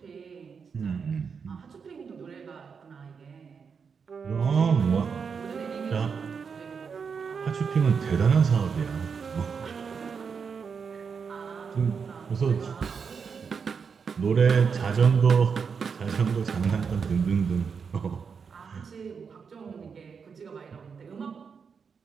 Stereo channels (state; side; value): quieter; left; 6.0 dB